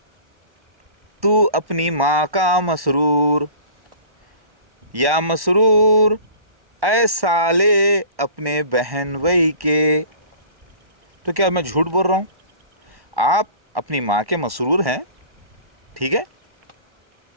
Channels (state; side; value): late; left; 1.1 ms